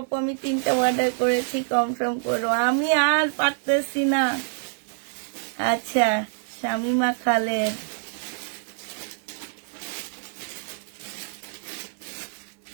আমি 3টা অর্ডার করেছি, কনফার্ম করো, আমি আর পারতেছি না। আচ্ছা, শামিমা খালেদ,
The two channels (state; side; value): silent; left; digital silence